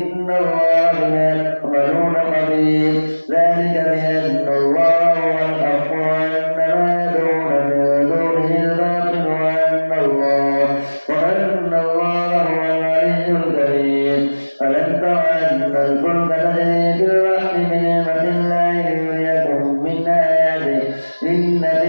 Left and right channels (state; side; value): inverted; both; correlation -1.00